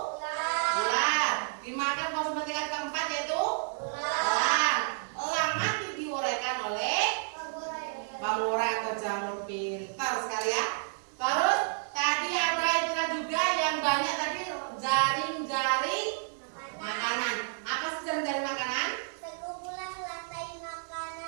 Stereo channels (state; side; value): silent; left; digital silence